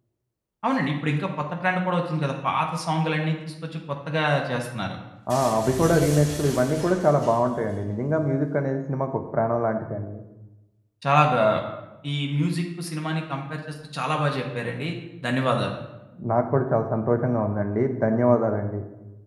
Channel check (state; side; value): identical; both; correlation 1.00